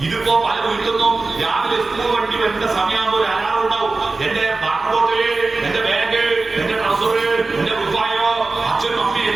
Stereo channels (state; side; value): quieter; left; 3.6 dB